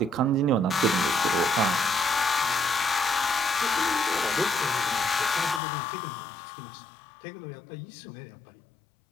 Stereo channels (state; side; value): drops out; right; at 5.6 s